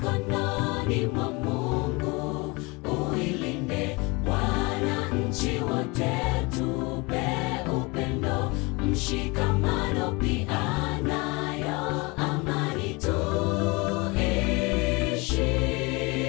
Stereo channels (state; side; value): quieter; right; 26.6 dB